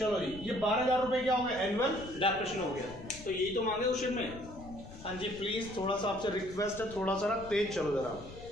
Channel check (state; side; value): noise; left; rumble, 15 dB below the sound